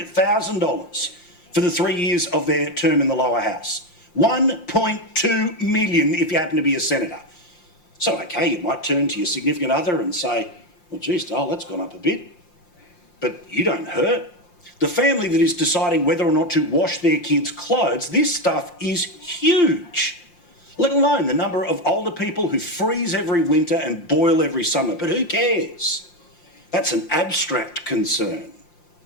for the 3 years of their term in the lower house. 1.2 million if you happen to be a senator. So, okay, you might turn to your significant other and say, well, geez, Dole, that's gone up a bit. But you don't hurt. The family that is deciding whether or not to wash their kids' clothes, this stuff is huge. Let alone the number of older people who freeze every winter and boil every summer. But who cares? That's an abstract concern.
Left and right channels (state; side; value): late; right; 5.7 ms